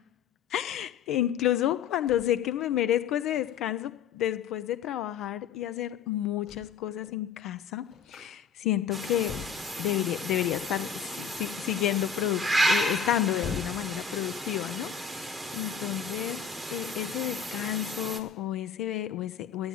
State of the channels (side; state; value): right; quieter; 6.9 dB